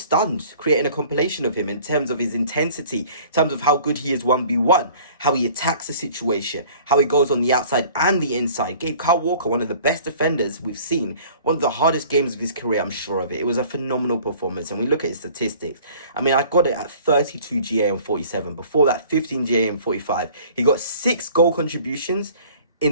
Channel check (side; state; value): both; inverted; correlation -0.49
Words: stunned creating a compilation of him in terms of his intensity, in terms of how good he is 1v1, how he attacks the situation, how he goes on the outside and the inside. Gave Kyle Walker one of the best defenders we've seen, one of the hardest games of his career, I'm sure of it. It was a phenomenal performance. And we look at his statistics. I mean, I got it at 32 GA and 47. Before that, 15 GA and 45. He got 6 goal contributions in